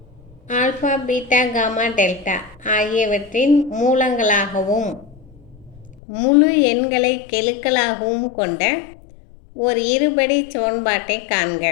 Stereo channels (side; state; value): right; drops out; at 6.0 s